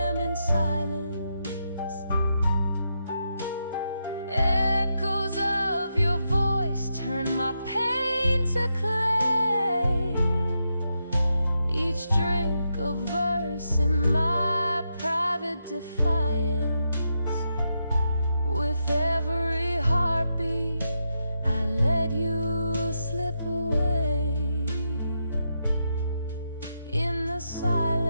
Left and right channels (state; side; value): inverted; both; correlation -0.84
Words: in silence, echoes of your voice turn my pain to clay. Each drink a verse in my private defiance. With every heartbeat, I let you slip away. In the